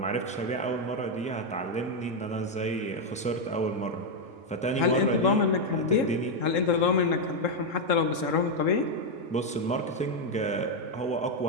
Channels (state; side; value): normal; both; correlation 0.02